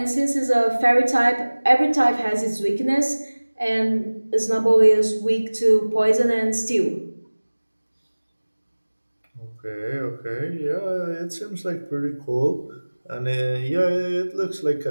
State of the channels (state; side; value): inverted; both; correlation -1.00